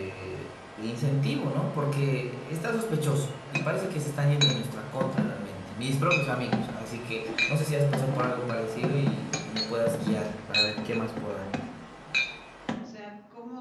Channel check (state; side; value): identical; both; correlation 1.00